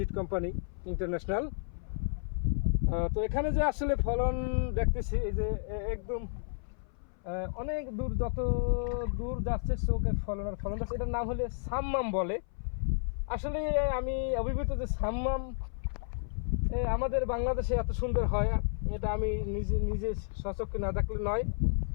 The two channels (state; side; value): silent; right; 57 dB below the other